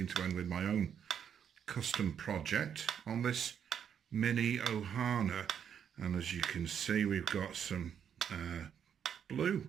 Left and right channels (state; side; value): quieter; left; 8.3 dB